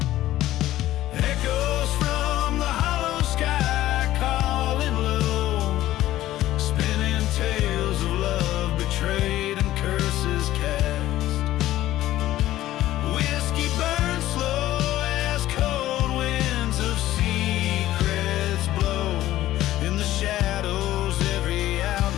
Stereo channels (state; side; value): quieter; right; 14.5 dB